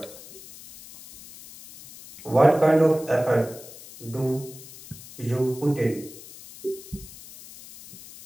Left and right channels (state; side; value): noise; left; hiss, 17 dB below the sound